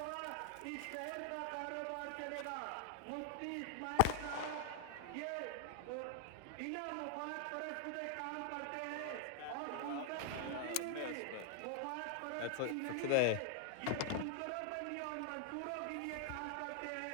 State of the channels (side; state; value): both; different; correlation 0.00